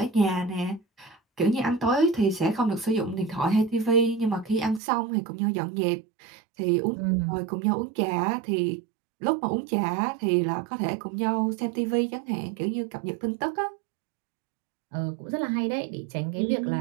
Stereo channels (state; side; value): drops out; left; at 4.8 s